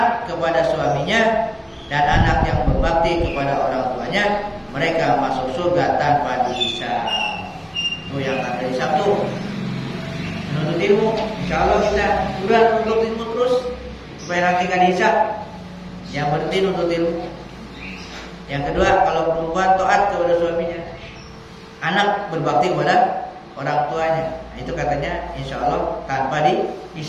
kepada suaminya dan anak yang berbakti kepada orang tuanya, mereka masuk surga tanpa dihisab. Itu yang ada hisab tuh. Menuntut ilmu, insya Allah kita udah menuntut ilmu terus supaya nanti kan dihisab. Yang berhenti nuntut ilmu. Yang kedua, kalau perempuan taat kepada suaminya, anak berbakti kepada orang tuanya, nah, itu katanya insya Allah tanpa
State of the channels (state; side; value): identical; both; correlation 1.00